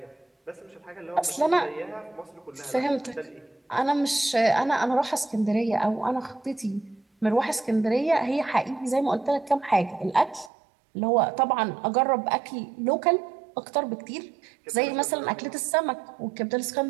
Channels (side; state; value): left; drops out; at 10.5 s